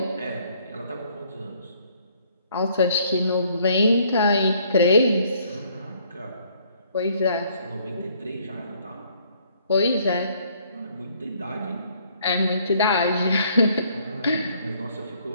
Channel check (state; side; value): inverted; both; correlation -0.63